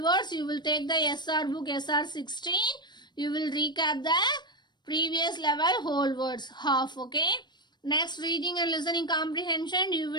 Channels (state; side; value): late; right; 0.21 ms